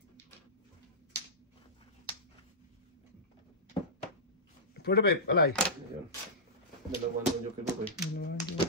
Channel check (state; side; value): normal; both; correlation -0.15